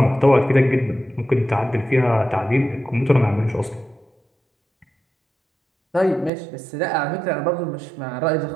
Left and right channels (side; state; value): left; drops out; at 6.3 s